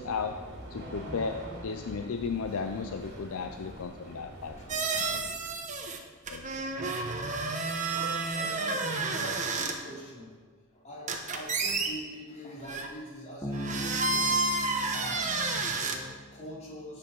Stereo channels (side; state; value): both; normal; correlation -0.03